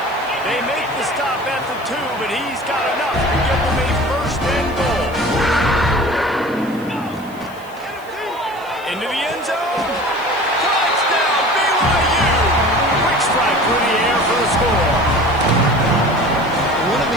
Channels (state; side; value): noise; left; hiss, 25 dB below the sound